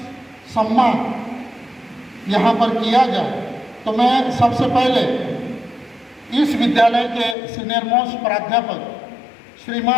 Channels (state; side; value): drops out; right; at 7.4 s